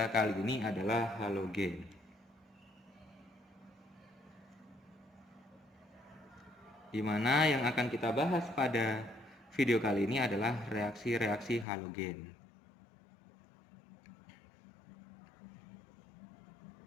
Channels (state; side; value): drops out; right; at 11.7 s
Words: kali ini adalah halogen. Dimana yang akan kita bahas pada video kali ini adalah reaksi-reaksi halogen.